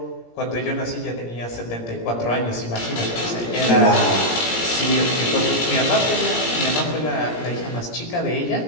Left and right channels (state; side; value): late; right; 17 ms